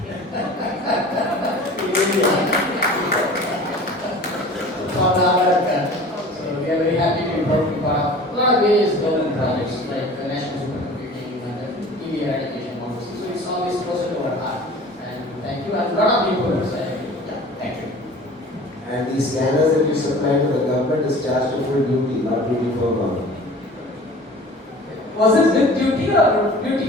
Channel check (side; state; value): both; normal; correlation 0.42